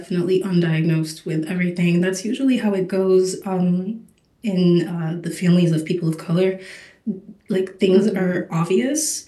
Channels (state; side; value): identical; both; correlation 1.00